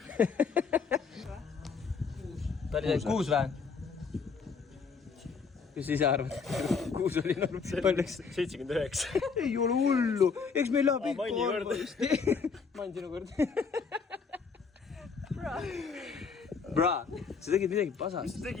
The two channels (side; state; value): right; quieter; 5.4 dB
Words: Ta oli 6 vähe? Kus ise arvad? 6 oli norm. Palju? 79. Ei ole hullu. Eks meil läheb ikka Manni arva just. Mann sinu kord. Bra, sa tegid midagi pasast. Mis sa